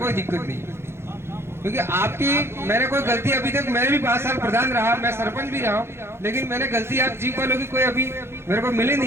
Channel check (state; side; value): late; left; 0.12 ms